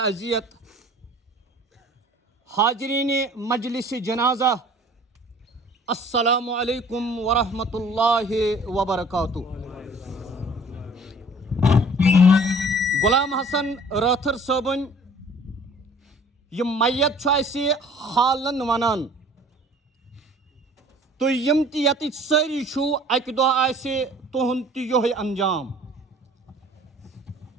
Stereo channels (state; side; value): normal; both; correlation 0.50